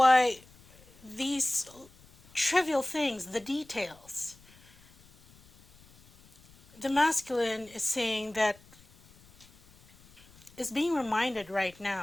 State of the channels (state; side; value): noise; left; rumble, 27 dB below the sound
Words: these trivial things, the details, the masculine is saying that, is being reminded right